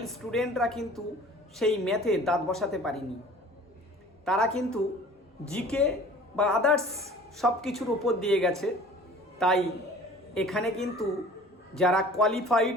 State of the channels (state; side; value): normal; both; correlation 0.47